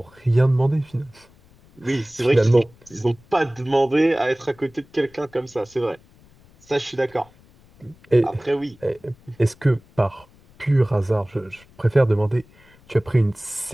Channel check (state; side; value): noise; left; rumble, 28 dB below the sound